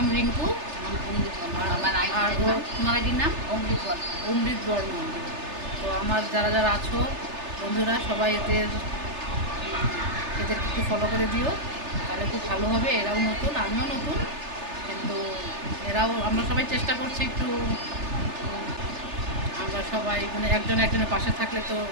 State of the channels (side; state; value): left; late; 3.3 ms